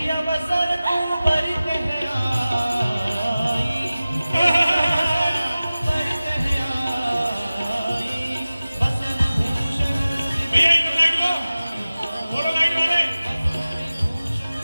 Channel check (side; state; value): both; inverted; correlation -0.97